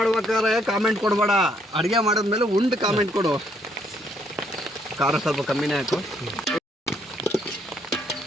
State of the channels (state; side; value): normal; both; correlation 0.69